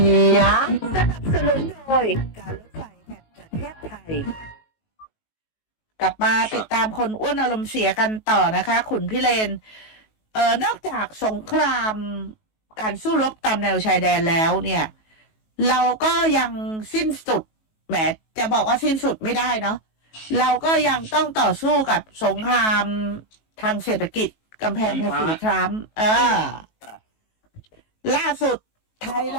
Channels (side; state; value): right; late; 19 ms